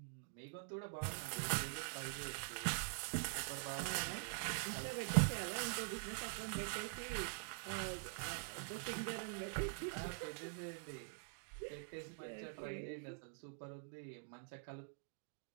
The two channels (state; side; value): silent; left; digital silence